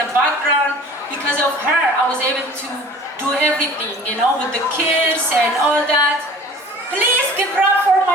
background. Because of her, I was able to do everything, you know, with the kids and all that. Please give it up for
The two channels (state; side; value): normal; both; correlation 0.44